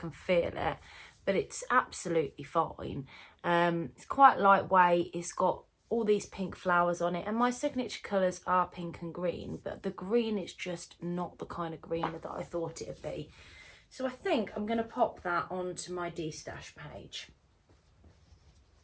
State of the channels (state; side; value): identical; both; correlation 1.00